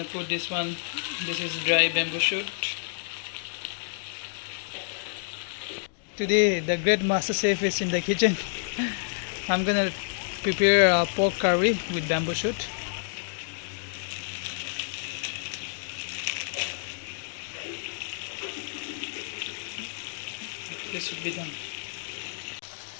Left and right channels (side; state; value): right; silent; digital silence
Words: put this one. This is dry bamboo shoot. Today the great master chef is in the kitchen. I'm gonna prepare a pork curry with bamboo shoot. This should be done.